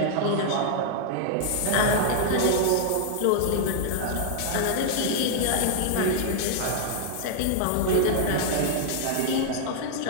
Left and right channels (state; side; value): different; both; correlation -0.01